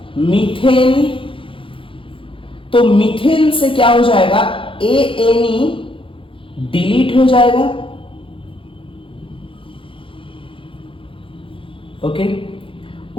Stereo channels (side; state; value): right; late; 0.25 ms